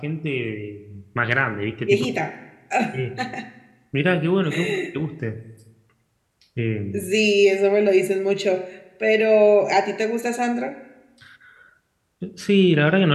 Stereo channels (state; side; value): identical; both; correlation 1.00